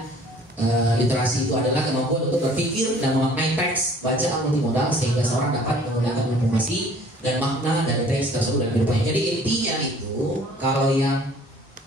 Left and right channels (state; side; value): normal; both; correlation 0.53